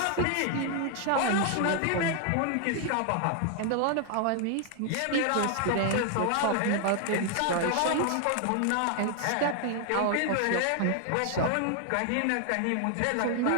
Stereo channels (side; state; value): both; different; correlation 0.00